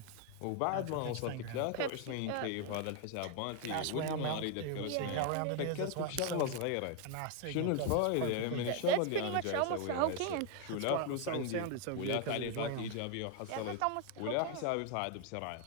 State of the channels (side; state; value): both; different; correlation 0.01